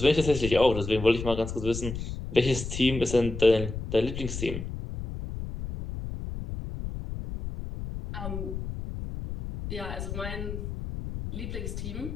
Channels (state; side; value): noise; left; rumble, 7 dB below the sound